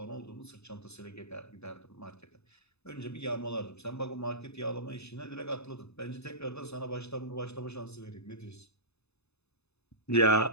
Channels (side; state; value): right; late; 0.80 ms